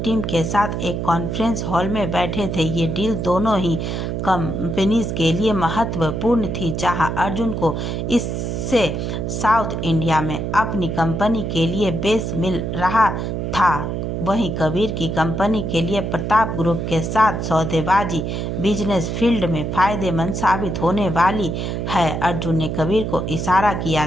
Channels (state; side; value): noise; right; hum, 2 dB below the sound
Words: टीम के साथ एक कॉन्फ्रेंस हॉल में बैठे थे। ये डील दोनों ही कंपनीज के लिए महत्वपूर्ण थी। जहां अर्जुन को इससे साउथ इंडिया में अपनी कंपनी के लिए बेस मिल रहा था, वहीं कबीर की कंपनी के लिए प्रताप ग्रुप के साथ सौदेबाजी बिजनेस फील्ड में फायदेमंद साबित होने वाली है। अर्जुन ने कबीर को इशारा किया